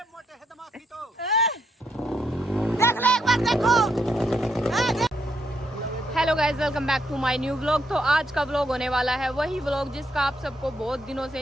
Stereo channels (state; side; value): normal; both; correlation 0.76